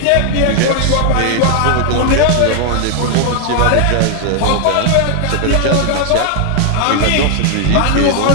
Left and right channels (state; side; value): different; both; correlation 0.00